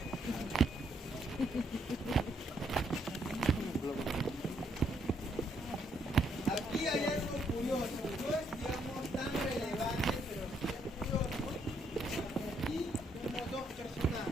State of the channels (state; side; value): normal; both; correlation 0.73